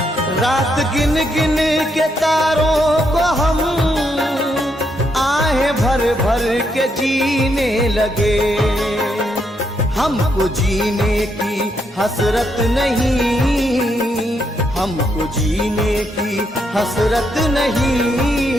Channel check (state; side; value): normal; both; correlation 0.77